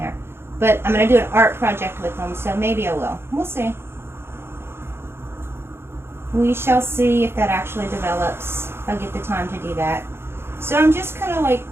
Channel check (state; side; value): late; left; 0.12 ms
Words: But I'm going to do an art project with them, so maybe I will. We'll see. We shall see if that actually develops. If I get the time to do that. So I'm just kind of like